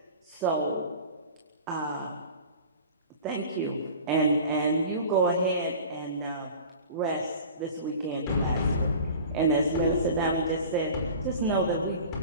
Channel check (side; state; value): both; inverted; correlation -0.39